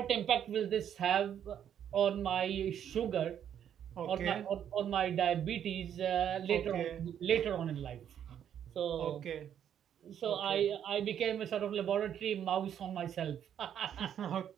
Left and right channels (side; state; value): left; quieter; 9.4 dB